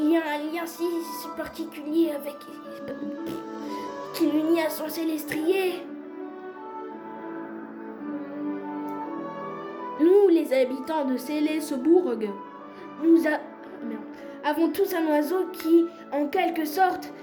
y a un lien si particulier avec... qui l'unit à son Célestrier. Nous, les habitants de Célesbourg, avons tous un oiseau qui, en quelque sorte,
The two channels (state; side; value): identical; both; correlation 1.00